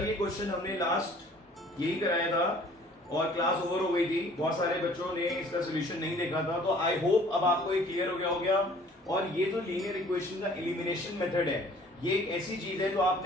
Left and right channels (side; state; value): both; normal; correlation 0.54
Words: ये क्वेश्चन हमने लास्ट यही कराया था और क्लास ओवर हो गई थी। बहुत सारे बच्चों ने इसका सोल्यूशन नहीं देखा था, तो आई होप अब आपको ये क्लियर हो गया। और ये जो लीनियर इक्वेशन का एलिमिनेशन मेथड है, ये एक ऐसी चीज है जो